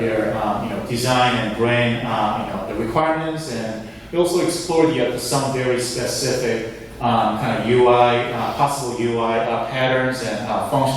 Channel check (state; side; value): identical; both; correlation 1.00